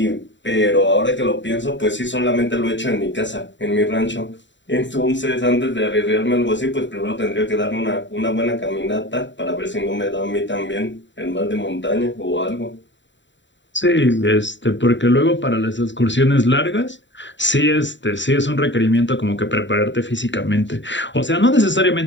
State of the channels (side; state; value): right; late; 0.54 ms